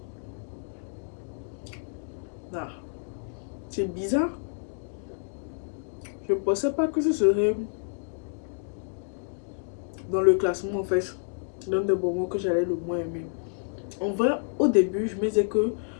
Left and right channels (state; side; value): silent; right; digital silence